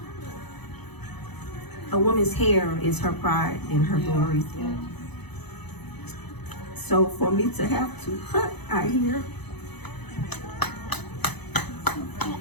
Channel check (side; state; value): right; late; 0.99 ms